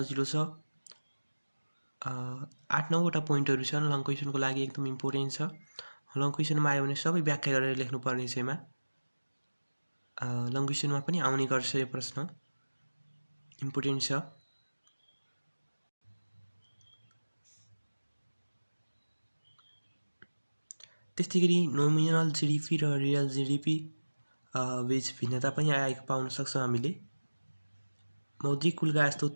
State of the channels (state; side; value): inverted; both; correlation -1.00